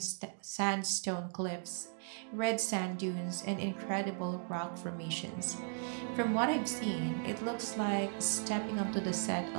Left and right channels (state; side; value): silent; left; 53 dB below the other